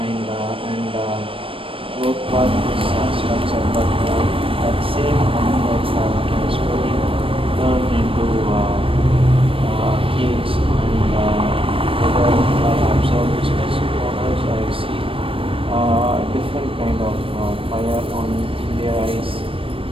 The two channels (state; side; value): late; left; 0.26 ms